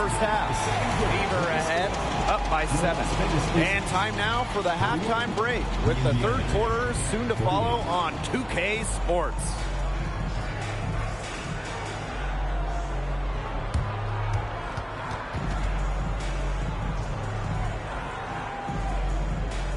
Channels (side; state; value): both; identical; correlation 1.00